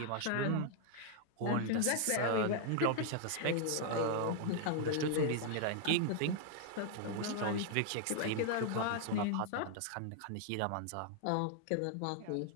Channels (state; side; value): different; both; correlation 0.00